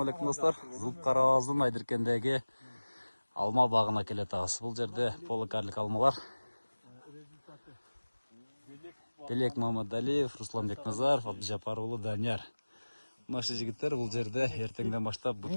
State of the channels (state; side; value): inverted; both; correlation -1.00